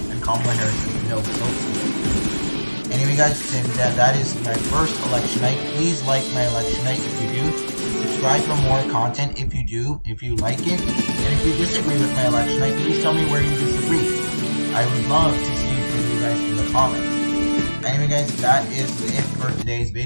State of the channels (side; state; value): both; inverted; correlation -1.00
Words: and Kamala Harris has no tilt states. Anyway guys, that is my first election night. Please like my election night if you do. Subscribe for more content if you do, if you like it. And if you disagree with my election night, please tell me where you disagree. I would love to see from you guys in the comments. Anyway guys, that is it for today's